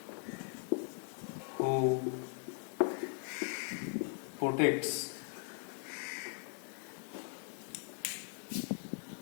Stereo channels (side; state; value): right; silent; 52 dB below the other